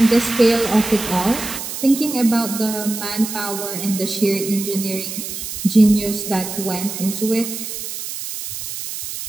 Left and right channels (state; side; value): noise; right; hiss, 7 dB below the sound